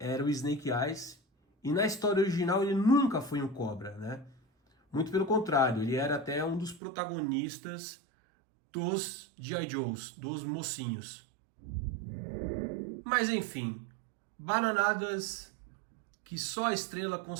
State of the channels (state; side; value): drops out; left; at 6.8 s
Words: o Snake Eyes E na história original ele nunca foi um cobra, né? Muito pelo contrário, ele era até um dos protagonistas dos G.I. Joes, dos mocinhos. Mas enfim, bananadas que só a Estrela